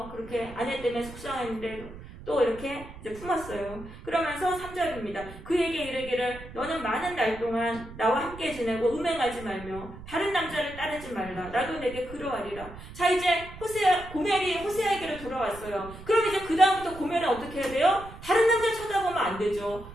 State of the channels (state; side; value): noise; right; rumble, 15 dB below the sound